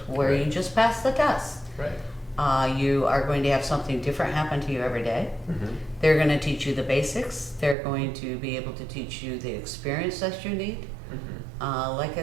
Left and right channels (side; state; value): left; drops out; at 7.8 s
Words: where Right. you just pass the test. Right. You are going to have something different happen to you every day. Mm-hmm. They're going to teach you the basics. They're going to be able to teach you the experience that you need. Mm-hmm. Like I